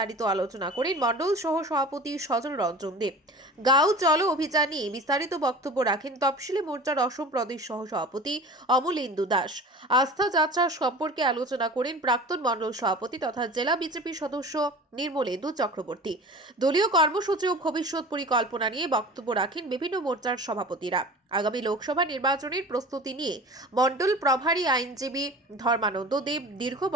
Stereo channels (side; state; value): both; normal; correlation 0.38